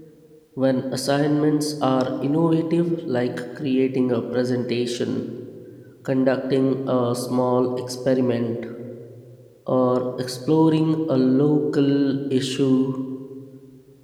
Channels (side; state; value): both; identical; correlation 1.00